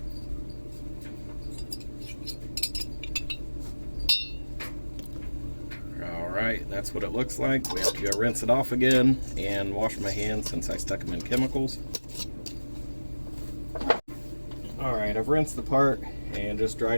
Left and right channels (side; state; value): both; inverted; correlation -1.00